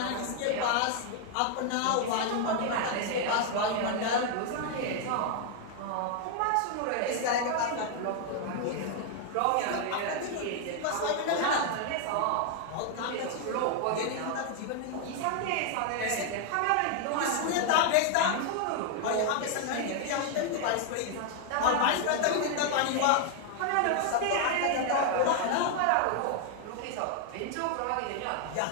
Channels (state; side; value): different; both; correlation 0.00